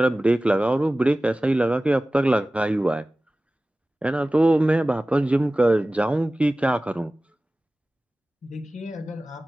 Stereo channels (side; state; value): both; normal; correlation 0.97